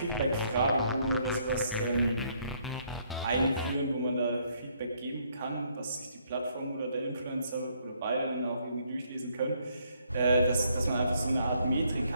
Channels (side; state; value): both; inverted; correlation -0.69